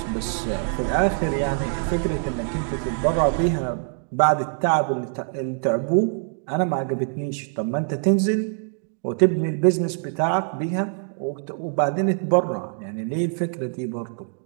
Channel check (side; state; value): left; silent; 55 dB below the other